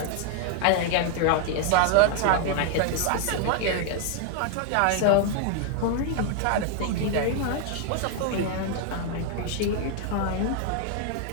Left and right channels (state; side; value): different; both; correlation 0.01